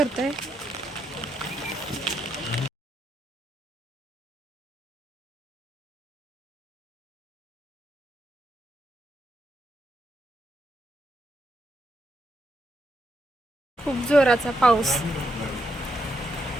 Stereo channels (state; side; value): normal; both; correlation 0.80